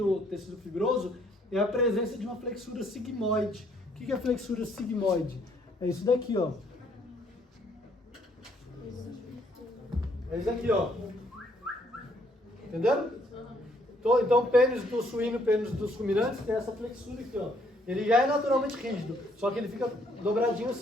tecido fibroso, é a presença de uma flexura sigmoide. O que é flexura sigmoide? É isso daqui, ó. É isso aqui, ó. Entenderam? Então, o pênis do suíno e o pênis dos ruminantes tem essa flexura aqui, ó. Ele já é naturalmente rígido, só que ele fica dobradinho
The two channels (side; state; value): both; normal; correlation 0.67